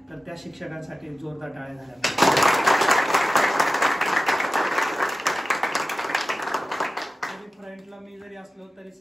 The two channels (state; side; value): normal; both; correlation 0.94